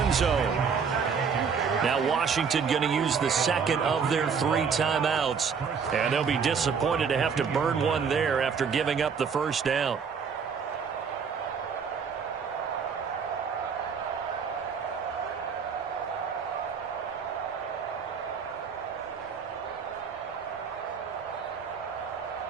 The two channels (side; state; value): left; quieter; 6.2 dB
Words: zone. Now Washington going to use the 2nd of their 3 timeouts. And they'll be disappointed to have to burn one there after giving up the 1st down.